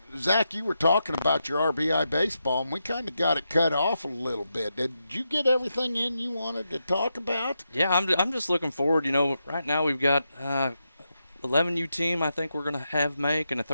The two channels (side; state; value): both; inverted; correlation -0.85